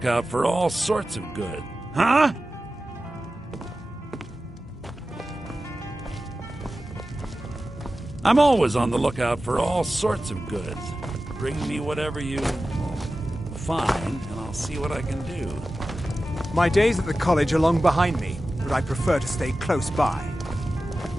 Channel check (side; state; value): both; normal; correlation 0.94